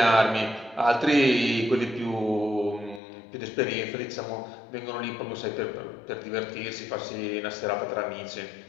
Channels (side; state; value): right; drops out; at 3.0 s